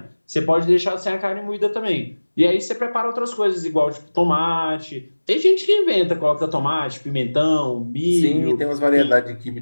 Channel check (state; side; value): inverted; both; correlation -1.00